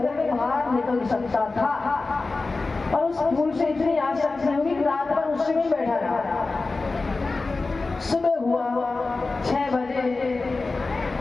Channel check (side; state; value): right; quieter; 3.6 dB